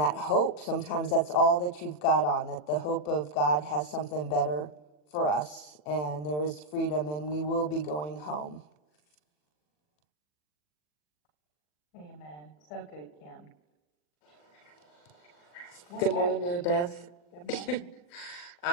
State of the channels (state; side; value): late; right; 40 ms